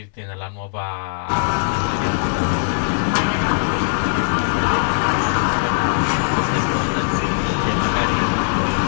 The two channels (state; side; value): silent; right; digital silence